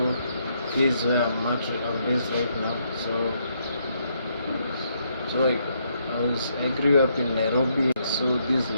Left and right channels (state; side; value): inverted; both; correlation -0.74